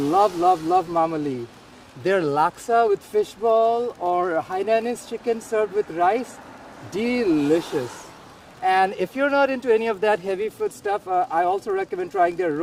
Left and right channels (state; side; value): identical; both; correlation 1.00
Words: Mama Lee. Their laksa with fishball or Hainanese chicken served with rice, delicious. And if you're not into any of that heavy food stuff, I also recommend trying their